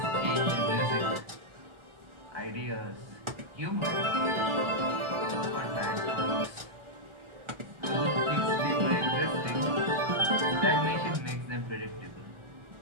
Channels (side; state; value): left; late; 1.4 ms